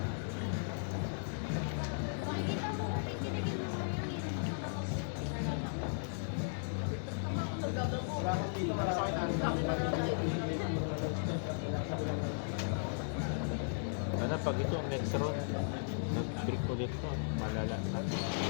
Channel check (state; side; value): silent; right; 54 dB below the other